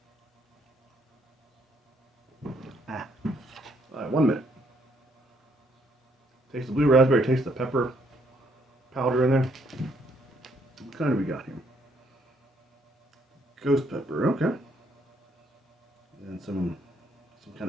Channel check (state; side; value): normal; both; correlation 0.70